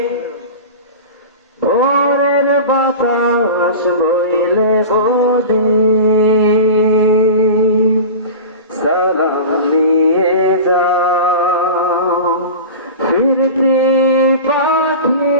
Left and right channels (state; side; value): inverted; both; correlation -0.31